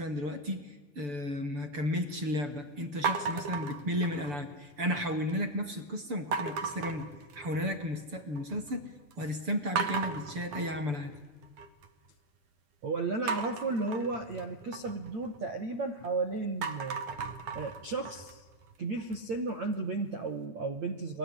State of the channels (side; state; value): left; late; 6.9 ms